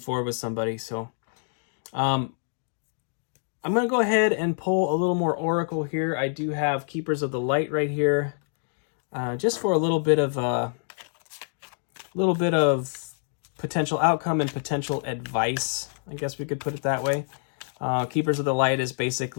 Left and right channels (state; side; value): silent; right; digital silence